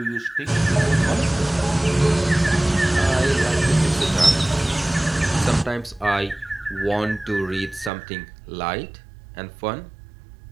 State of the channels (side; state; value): left; drops out; at 7.9 s